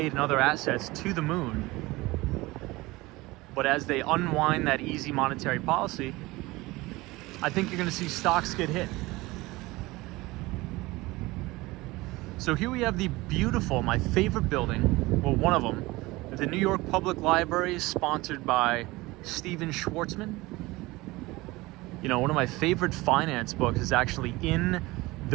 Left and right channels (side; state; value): left; quieter; 20.9 dB